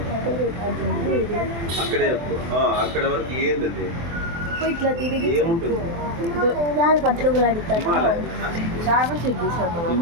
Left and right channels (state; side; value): late; left; 24 ms